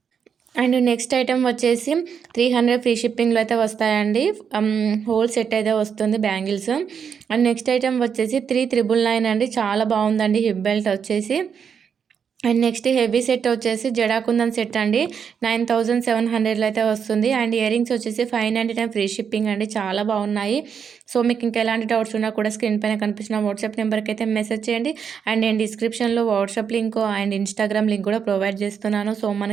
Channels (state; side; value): quieter; left; 7.1 dB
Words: అండ్ నెక్స్ట్ ఐటెం వచ్చేసి 300 ఫ్రీ షిప్పింగ్లో అయితే వస్తాయండి. హోల్ సెట్ అయితే వస్తుంది బ్యాంగిల్స్. అండ్ నెక్స్ట్ ఐటెం వచ్చేసి 3999 అండి. చాలా బాగుందండి హిప్ బెల్ట్ వచ్చేసి. అండ్ నెక్స్ట్ హెవీ సెట్ వచ్చేసి జడాకుందన్ సెట్ అండి, 9700లో అయితే వస్తుంది. అండ్ ఇయరింగ్స్ వచ్చేసి 599 ఫ్రీ షిప్పింగ్ అండి. చాలా బాగున్నాయి. సో మీకు ఇంకా ఎలాంటి డౌట్స్ ఉన్నా కూడా స్క్రీన్ పైన కనిపిస్తున్న వాట్సాప్ నెంబర్కి అయితే మెసేజ్ చేయండి. అండ్ నేను డిస్క్రిప్షన్లో WhatsApp link and Instagram link కూడా ప్రొవైడ్ చేస్తున్నాను. సో